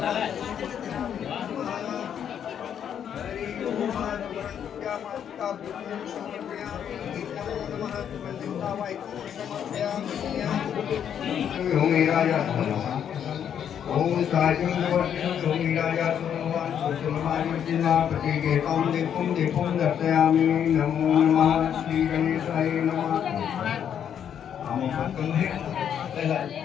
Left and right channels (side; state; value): right; quieter; 8.8 dB